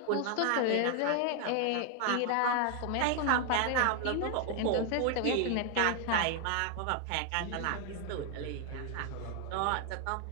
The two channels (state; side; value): different; both; correlation 0.00